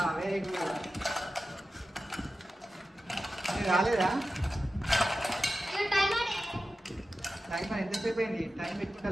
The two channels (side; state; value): both; normal; correlation 0.94